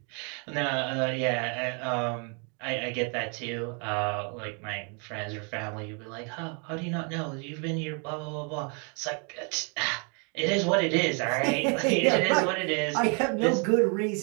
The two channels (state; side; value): quieter; left; 36.4 dB